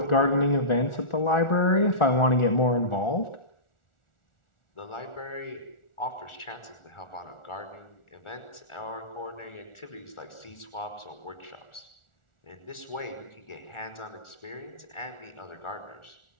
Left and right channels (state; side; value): late; right; 1.4 ms